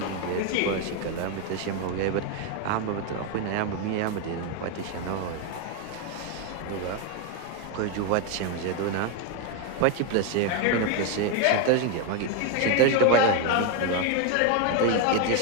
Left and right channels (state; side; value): different; both; correlation 0.02